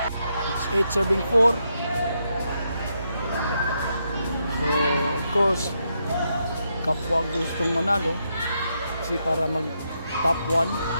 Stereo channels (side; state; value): both; inverted; correlation -0.81